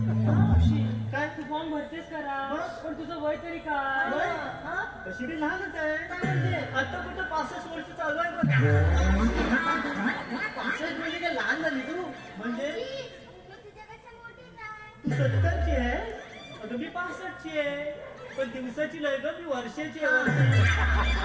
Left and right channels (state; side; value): identical; both; correlation 1.00